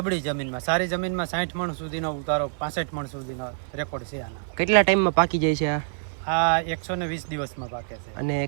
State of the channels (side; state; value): left; silent; 56 dB below the other